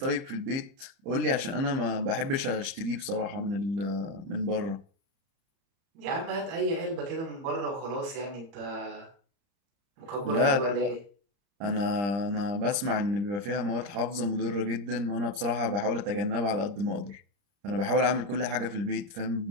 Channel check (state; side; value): late; left; 30 ms